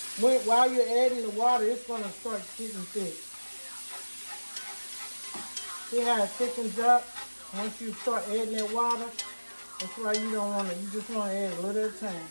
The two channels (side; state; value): both; inverted; correlation -1.00